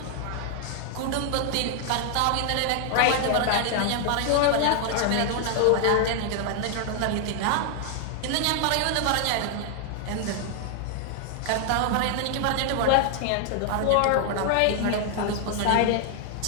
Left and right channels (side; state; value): both; different; correlation 0.00